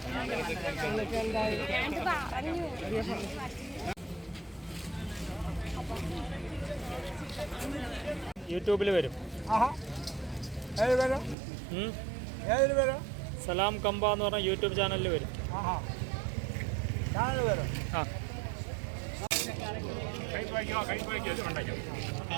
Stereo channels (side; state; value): left; drops out; at 11.4 s